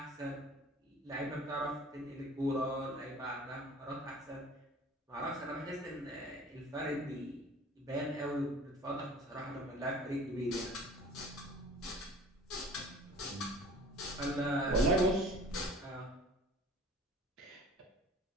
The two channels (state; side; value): normal; both; correlation 0.46